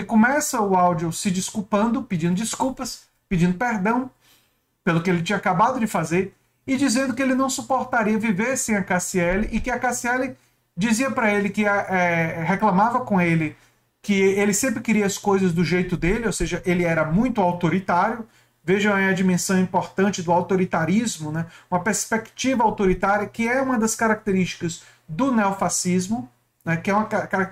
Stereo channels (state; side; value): identical; both; correlation 1.00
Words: começa o áudio se desculpando, pedindo desculpas, pedindo perdão pelo que ele tinha acabado de fazer e dizendo que ele não suportaria viver sem a Cassiele e que a Cassiele dizia para ele que reclamava com ele que ele sempre queria as coisas do jeito dele, ou seja, ele era muito autoritário. Vejam aí a dimensão importante do autoritarismo, né? Uma perspectiva autoritária que é uma das características do neofascismo, né? Que é uma